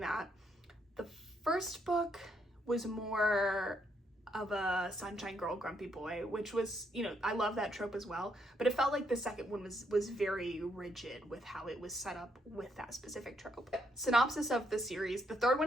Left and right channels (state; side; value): normal; both; correlation 0.75